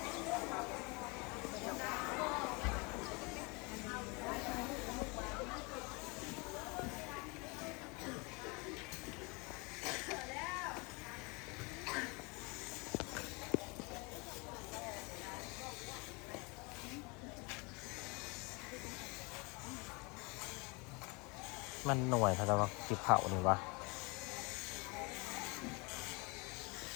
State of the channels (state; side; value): quieter; right; 28.9 dB